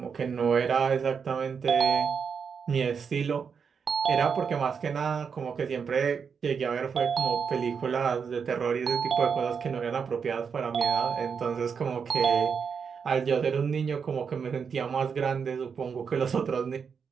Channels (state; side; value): quieter; left; 6.3 dB